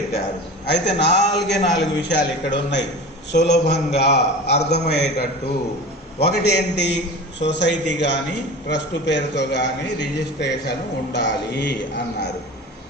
అయితే 4 విషయాలు ఇక్కడ ఉన్నాయి సులభంగా అర్థమయ్యేటట్టు. ఒకటి ఏంటి, సొసైటీ కానీ ట్రస్ట్ పేరుతో కానీ రిజిస్ట్రేషన్ ఉండాలి అన్నారు.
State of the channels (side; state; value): both; normal; correlation 0.34